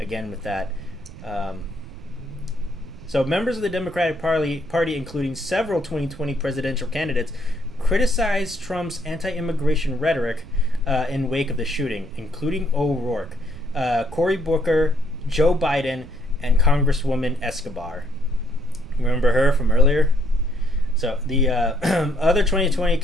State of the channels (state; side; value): noise; right; rumble, 16 dB below the sound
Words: with that. So members of the Democratic Party, including several 2020 presidential candidates, criticized Trump's anti-immigration rhetoric in wake of the shooting, including O'Rourke, Cory Booker, Joe Biden, and Congresswoman Escobar. Remember her from earlier? So the other 2020